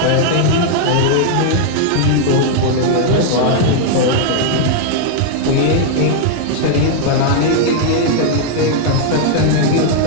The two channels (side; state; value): both; different; correlation -0.01